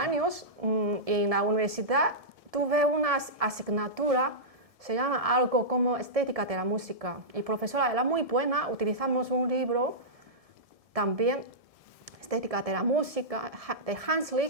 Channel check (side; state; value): left; late; 1.7 ms